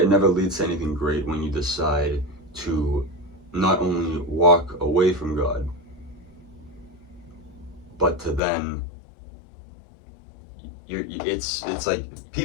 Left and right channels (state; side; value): drops out; right; at 8.4 s